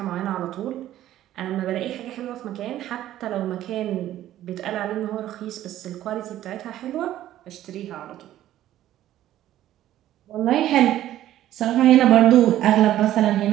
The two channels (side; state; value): left; quieter; 13.1 dB